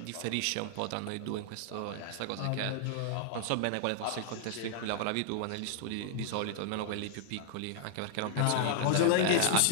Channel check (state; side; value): different; both; correlation -0.01